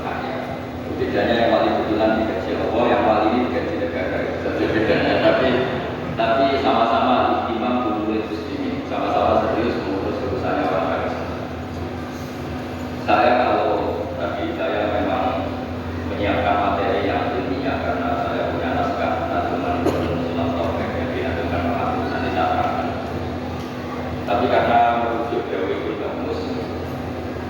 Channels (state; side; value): identical; both; correlation 1.00